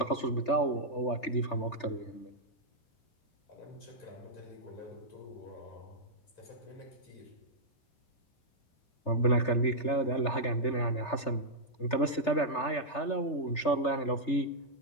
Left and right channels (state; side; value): late; right; 3.3 ms